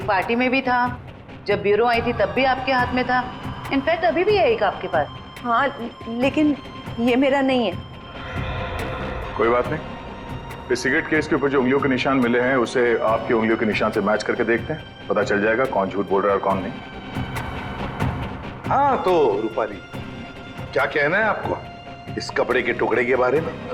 पार्टी में भी था, जब ब्यूरो आई थी तब भी आपके हाथ में था, इनफैक्ट अभी भी है एक आपके पास। हाँ लेकिन ये मेरा नहीं है। कोई बात नहीं, इस सिगरेट केस के ऊपर जो उंगलियों के निशान मिले हैं उसे आपकी उंगलियों के निशान से मैच करके देखते हैं, पता चल जाएगा कौन झूठ बोल रहा है और कौन नहीं। हाँ तो रूपाली, क्या कहना है आपको इस कपड़े के टुकड़े के बारे में?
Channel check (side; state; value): both; identical; correlation 1.00